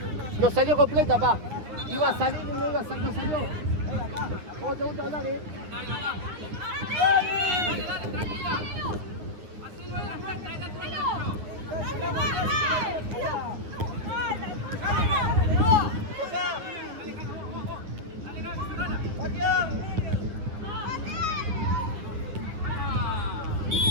No salió completa, pa. Iba a salir y no iba a salir, no salió. ¿Cómo te gusta hablar,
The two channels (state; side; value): late; left; 9.8 ms